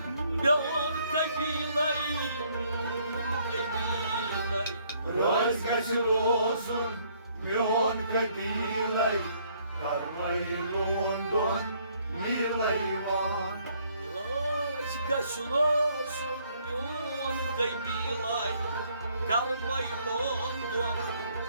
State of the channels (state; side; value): inverted; both; correlation -0.66